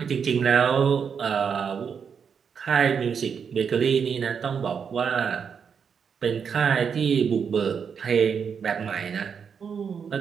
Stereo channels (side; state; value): left; quieter; 6.7 dB